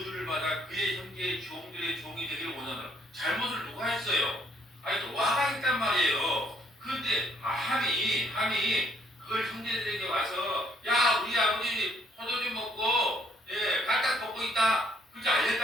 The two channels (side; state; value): both; normal; correlation 0.67